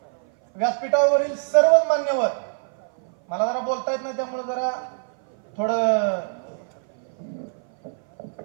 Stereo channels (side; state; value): left; silent; 57 dB below the other